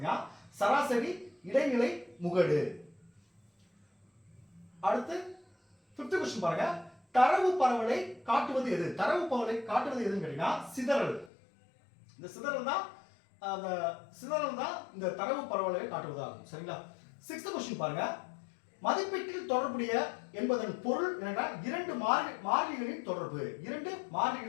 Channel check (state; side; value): drops out; right; at 11.3 s